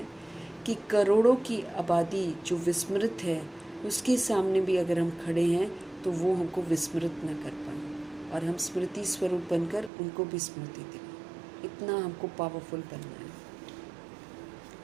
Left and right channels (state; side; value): drops out; left; at 9.9 s